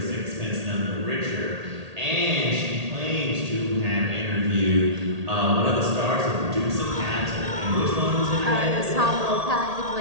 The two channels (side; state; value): left; late; 1.8 ms